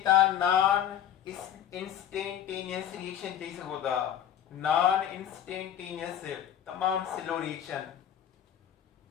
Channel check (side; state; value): right; quieter; 10.2 dB